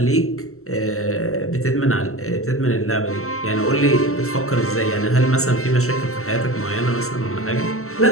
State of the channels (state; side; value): late; right; 0.63 ms